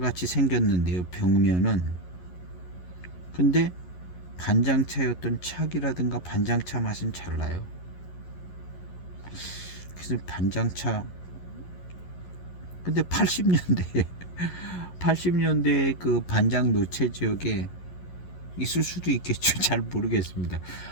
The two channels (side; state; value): right; late; 11 ms